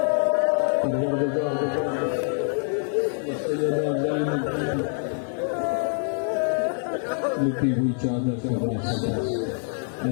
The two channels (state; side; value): silent; right; 62 dB below the other